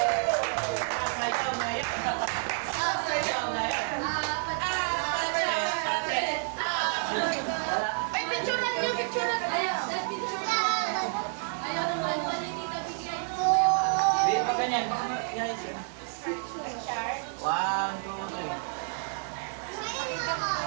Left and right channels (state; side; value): silent; left; 57 dB below the other